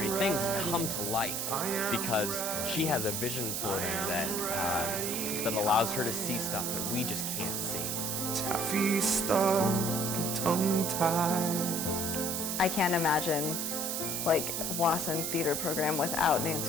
things come to life because she has a vision for them that allows her to see stuff that we just can't see. Taffy stuck, tongue-tied. I can't imagine like Wasson theater program without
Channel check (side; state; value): right; noise; hiss, 1 dB below the sound